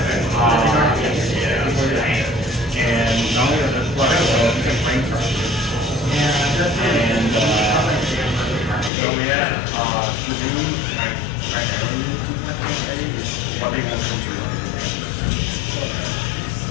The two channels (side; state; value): right; drops out; at 8.9 s